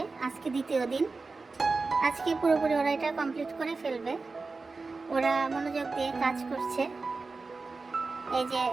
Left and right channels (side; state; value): left; quieter; 4.0 dB